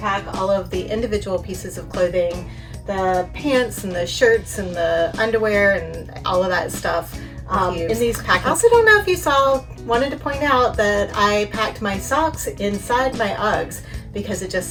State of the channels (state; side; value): identical; both; correlation 1.00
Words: pack all of the individual pieces of clothing, the pants and the shirts and the underwear and all of that stuff in these packing. I also don't know if you wanted to point out that I packed my socks inside my Uggs because it just